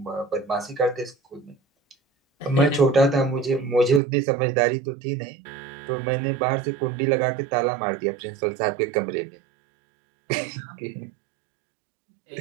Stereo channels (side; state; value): left; drops out; at 4.0 s